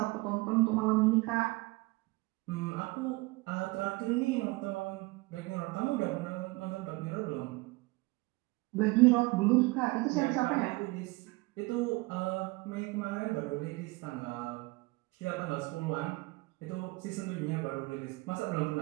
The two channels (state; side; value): quieter; left; 23.7 dB